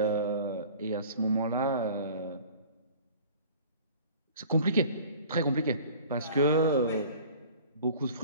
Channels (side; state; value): both; inverted; correlation -0.46